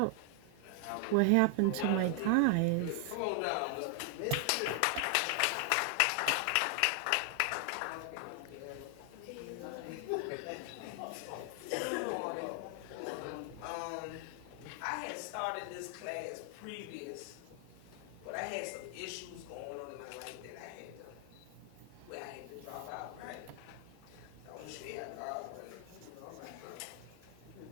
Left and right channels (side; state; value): both; different; correlation 0.00